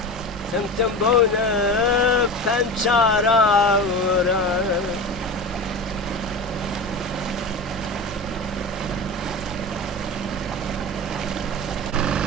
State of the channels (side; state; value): both; normal; correlation 0.28